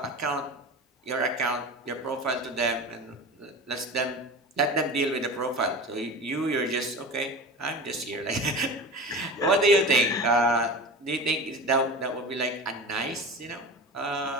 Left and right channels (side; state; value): both; normal; correlation 0.32